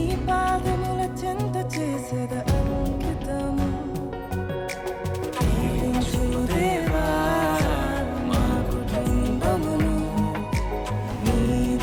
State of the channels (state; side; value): identical; both; correlation 1.00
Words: పాదముల చెంత చేసేద అంకితము. దేవా మా కుటుంబమును